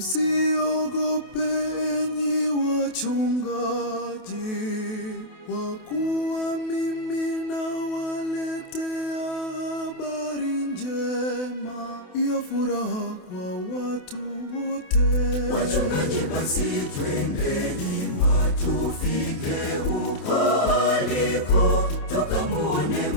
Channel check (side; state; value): right; late; 28 ms